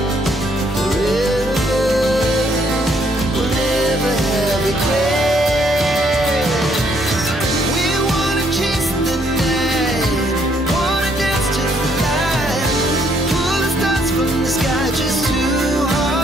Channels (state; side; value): normal; both; correlation 0.69